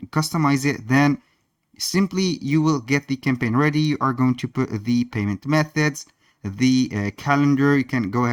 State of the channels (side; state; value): both; identical; correlation 1.00